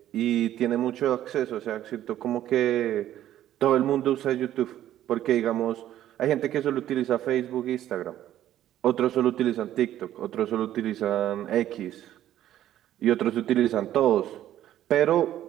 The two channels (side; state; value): left; quieter; 12.3 dB